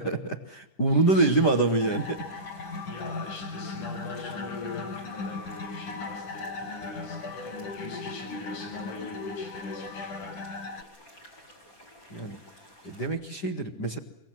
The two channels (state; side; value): late; right; 10 ms